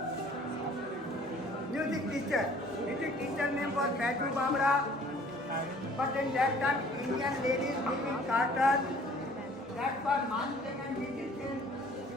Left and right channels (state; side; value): normal; both; correlation 0.53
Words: Music teacher. Music teacher name was Baitu Bamra. But in that time, Indian ladies live in carters. That's why Man Singh and musicians